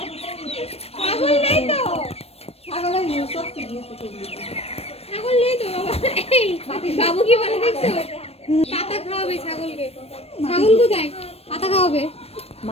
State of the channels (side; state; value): right; late; 0.29 ms